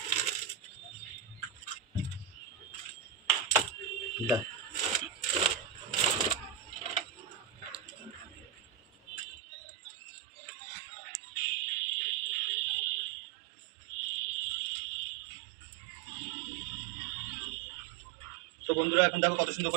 তো বন্ধুরা এখন দেখো কত সুন্দর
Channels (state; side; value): drops out; left; at 9.2 s